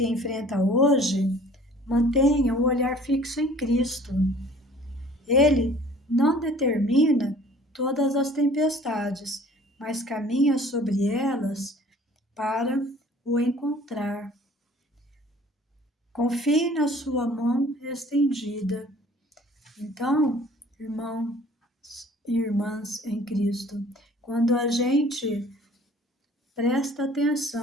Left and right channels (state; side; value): normal; both; correlation 0.51